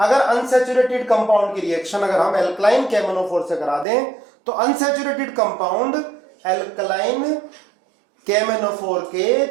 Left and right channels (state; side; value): drops out; left; at 3.9 s